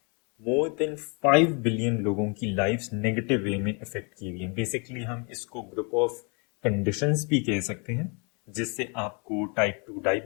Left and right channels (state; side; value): quieter; right; 34.3 dB